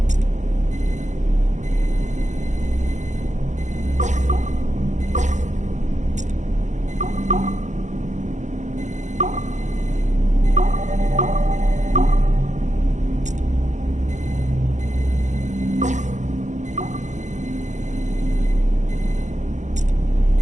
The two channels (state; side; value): late; left; 0.35 ms